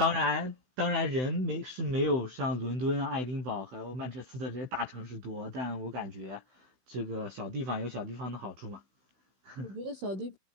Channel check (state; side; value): late; left; 16 ms